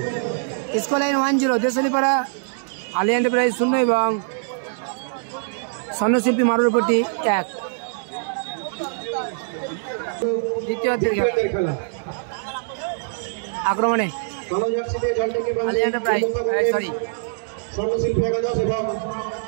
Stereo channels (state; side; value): silent; left; digital silence